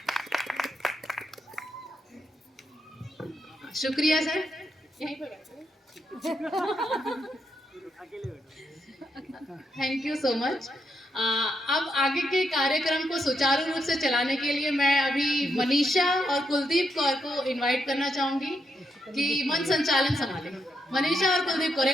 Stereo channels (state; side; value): normal; both; correlation 0.80